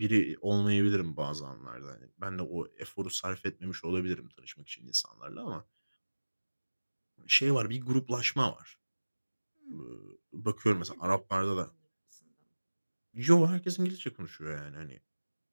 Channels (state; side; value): inverted; both; correlation -1.00